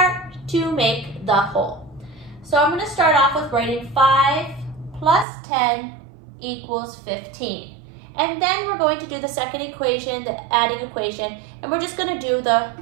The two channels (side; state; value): left; drops out; at 5.2 s